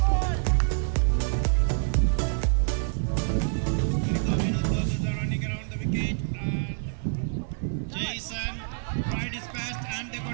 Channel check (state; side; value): silent; left; 60 dB below the other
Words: Running around the wicket and Jason tried his best and they